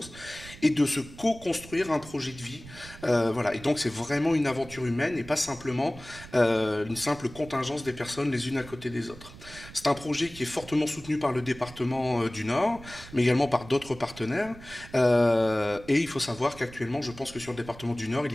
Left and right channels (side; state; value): right; noise; rumble, 17 dB below the sound